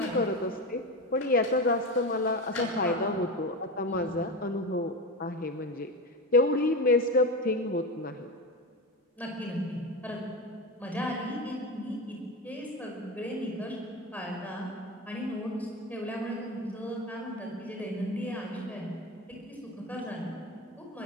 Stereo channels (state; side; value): normal; both; correlation 0.22